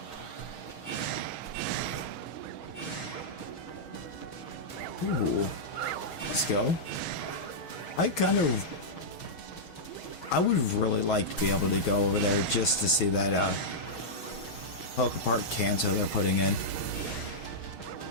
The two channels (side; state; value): right; late; 6.4 ms